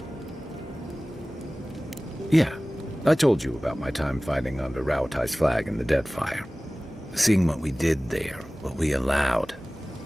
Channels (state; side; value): normal; both; correlation 0.98